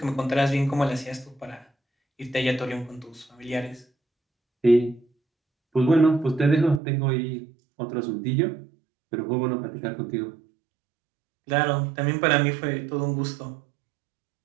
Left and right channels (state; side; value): drops out; left; at 6.8 s